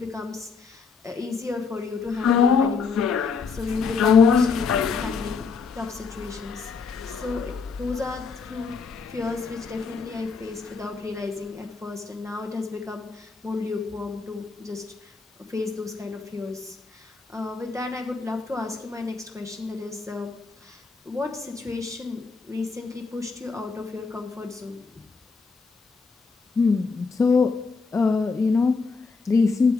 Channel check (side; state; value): right; quieter; 4.9 dB